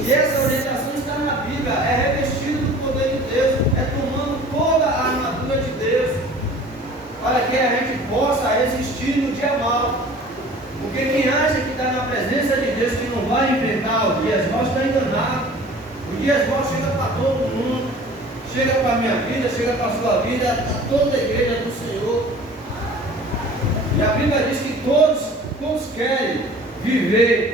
essa orientação está na Bíblia, é revestido do poder de Deus, é tomando toda a armadura de Deus, para que a gente possa resistir no dia mal. Porque quem acha que está na presença de Deus, que não vai enfrentar os dias maus, está enganado. Os dias maus chegam para todo mundo, chega para a minha vida, chega para a sua vida, para toda a igreja do Senhor. E a Bíblia diz que todos querem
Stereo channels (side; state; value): both; normal; correlation 0.45